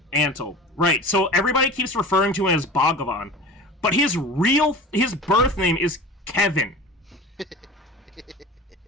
Antle. Right, so everybody keeps referring to him as Bhagavan, but his birth name is Kevin.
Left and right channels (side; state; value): both; normal; correlation 0.36